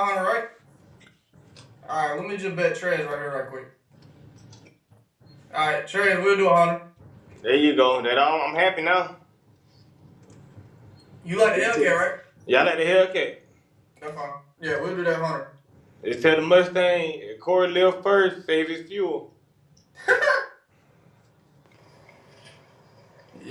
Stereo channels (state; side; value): identical; both; correlation 1.00